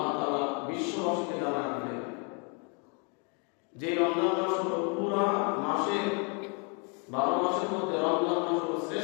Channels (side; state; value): right; quieter; 36.0 dB